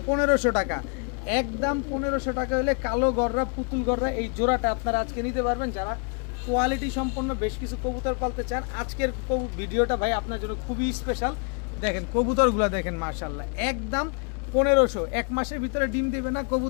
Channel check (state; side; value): quieter; right; 37.6 dB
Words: 1500 টাকা, একদম 1500 টাকা হলে কালো গররা পুতুল গররা এই জোড়াটা আপনারা আজকে নিতে পারবেন। যারা কোয়ালিটি সম্পন্ন বেশ কিছু কবুতর পালতে চান, আজকের ভিডিওটা ভাই আপনার জন্য খুবই স্পেশাল। দেখেন কবুতরগুলো দেখেন, মাশাআল্লাহ, একদম 1500, এক মাসের ভিতরে ডিম দিবে না,